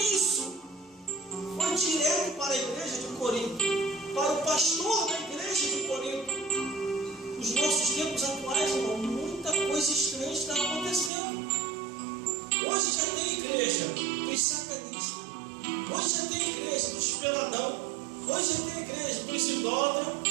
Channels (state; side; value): drops out; left; at 11.1 s